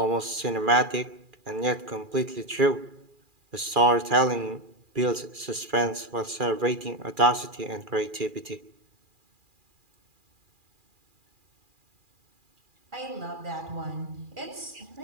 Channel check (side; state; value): left; late; 2.4 ms